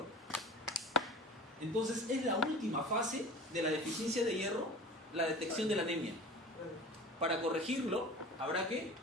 Entonces es la última fase de la deficiencia de hierro, la detección de la anemia. Para corregirlo, habrá que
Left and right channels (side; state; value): both; normal; correlation 0.39